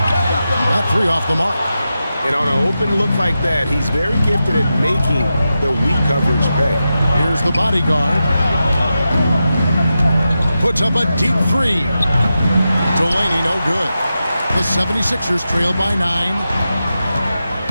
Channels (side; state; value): both; inverted; correlation -0.90